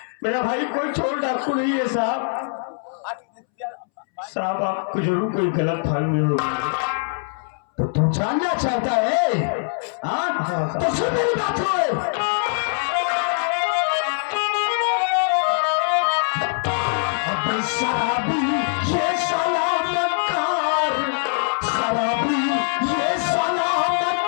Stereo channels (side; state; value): right; silent; 64 dB below the other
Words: मेरा भाई कोई चोर डाकू नहीं है साहब। साहब आपको जरूर कोई गलत फहमी हो। तो तू जानना चाहता है? हाँ तो सुन मेरी बात हो। शराबी ये सलामतकार, शराबी ये